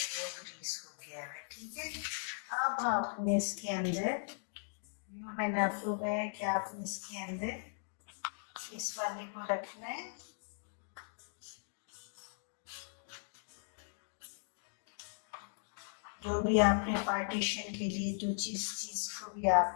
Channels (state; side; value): silent; right; digital silence